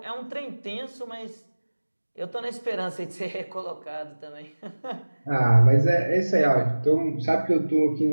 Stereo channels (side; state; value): both; inverted; correlation -1.00